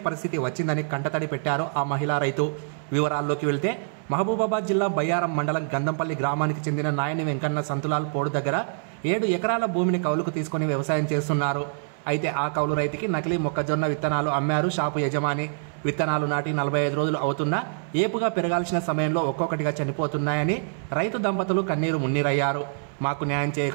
పరిస్థితి వచ్చిందని కంటతడి పెట్టారు ఆ మహిళా రైతు. వివరాల్లోకి వెళ్తే మహబూబాబాద్ జిల్లా బయ్యారం మండలం గంధంపల్లి గ్రామానికి చెందిన నాయని వెంకన్న సంతులాల్ పోడు దగ్గర 7 ఎకరాల భూమిని కౌలుకు తీసుకొని వ్యవసాయం చేస్తున్నారు. అయితే ఆ కౌలు రైతుకి నకిలీ మొక్కజొన్న విత్తనాలు అమ్మారు షాపు యజమాని. విత్తనాలు నాటి 45 రోజులు అవుతున్నా ఏపుగా పెరగాల్సిన సమయంలో ఒక్కొక్కటిగా చనిపోతున్నాయని రైతు దంపతులు కన్నీరు మున్నీరయ్యారు. మాకు న్యాయం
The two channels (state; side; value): silent; left; 61 dB below the other